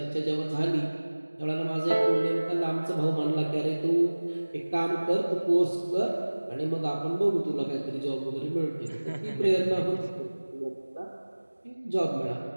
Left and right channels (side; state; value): both; inverted; correlation -1.00